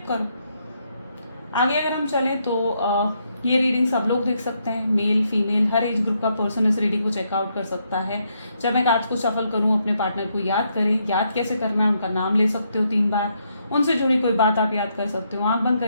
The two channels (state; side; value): inverted; both; correlation -0.77